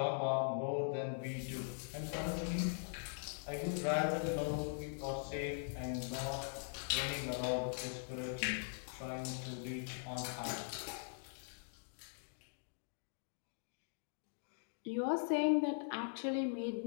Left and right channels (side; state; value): right; silent; digital silence